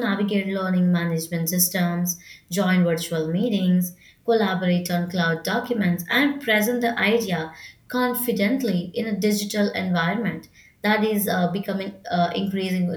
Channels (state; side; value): identical; both; correlation 1.00